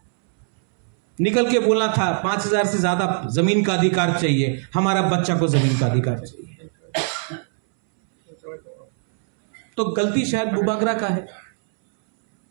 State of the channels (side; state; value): left; silent; 65 dB below the other